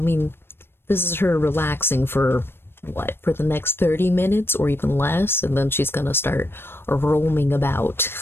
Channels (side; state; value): right; late; 0.11 ms